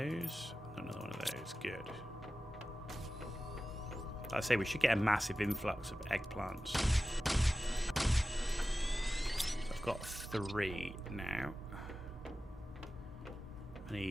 Another one of those. Good. I say we should get a massive influx of eggplants. So I've got 3 now. I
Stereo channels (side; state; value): both; normal; correlation 0.95